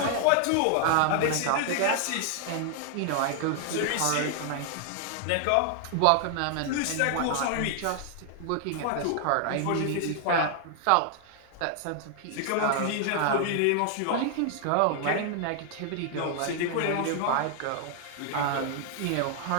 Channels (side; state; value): both; different; correlation 0.00